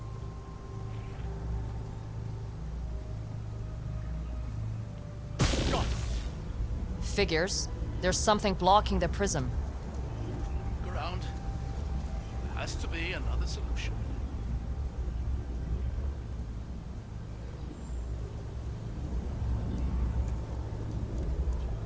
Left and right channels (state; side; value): identical; both; correlation 1.00